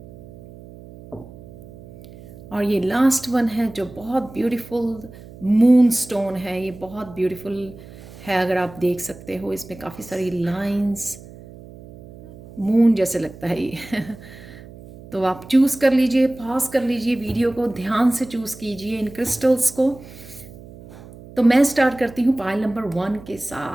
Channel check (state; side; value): noise; right; hum, 18 dB below the sound